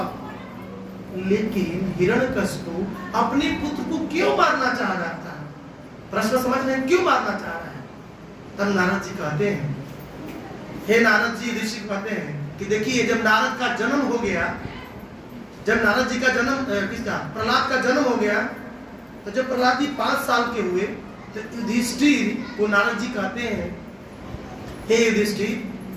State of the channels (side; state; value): both; identical; correlation 1.00